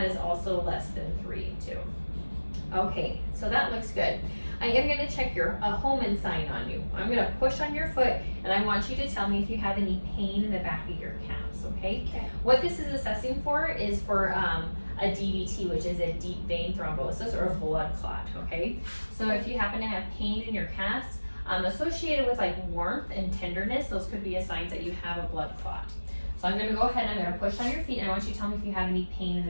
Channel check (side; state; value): both; inverted; correlation -1.00